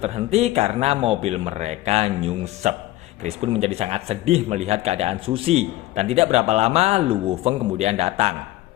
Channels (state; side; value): quieter; right; 16.8 dB